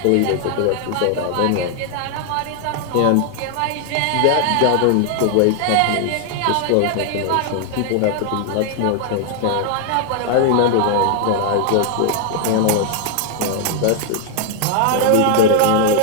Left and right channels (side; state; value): both; different; correlation 0.00